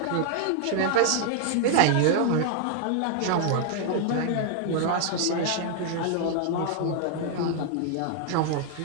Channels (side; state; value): both; different; correlation 0.00